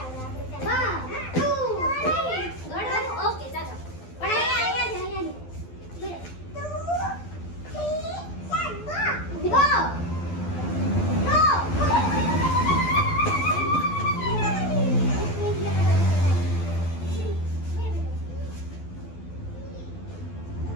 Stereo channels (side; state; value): right; late; 12 ms